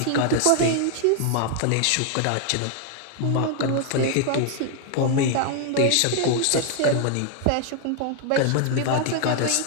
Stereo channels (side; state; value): both; different; correlation 0.00